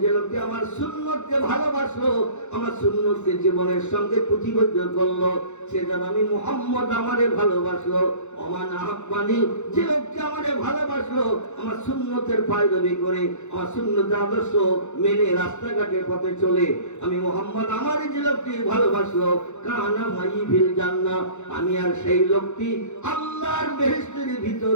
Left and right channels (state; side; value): late; right; 0.83 ms